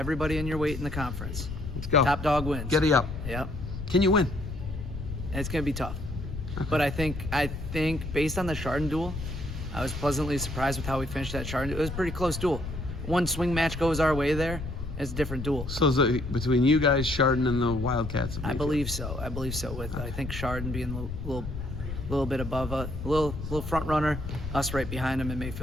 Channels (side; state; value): left; noise; rumble, 7 dB below the sound